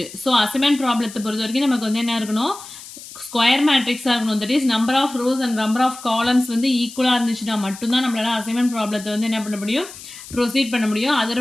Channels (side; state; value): left; noise; hiss, 15 dB below the sound